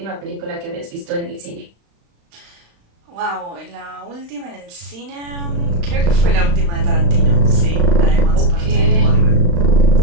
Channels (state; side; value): late; left; 35 ms